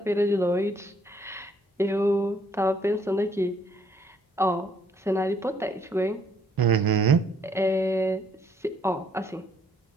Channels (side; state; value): both; normal; correlation 0.66